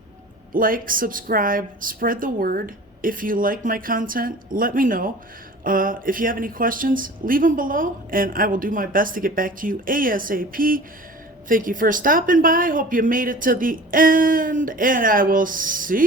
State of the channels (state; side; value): normal; both; correlation 0.41